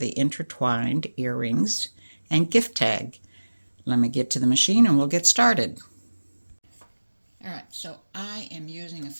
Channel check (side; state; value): both; inverted; correlation -1.00